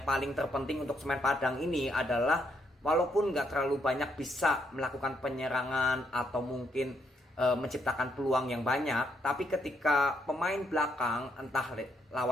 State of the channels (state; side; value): normal; both; correlation 0.75